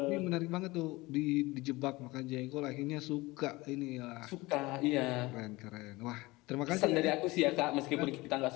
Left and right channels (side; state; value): right; quieter; 21.5 dB